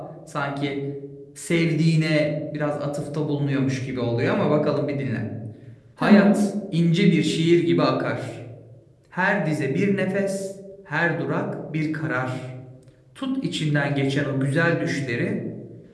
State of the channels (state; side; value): identical; both; correlation 1.00